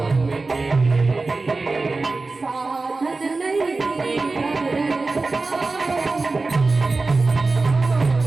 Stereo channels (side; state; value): left; quieter; 3.6 dB